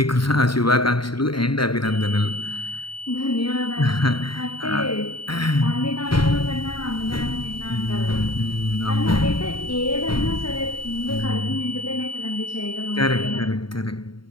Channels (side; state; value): right; late; 0.73 ms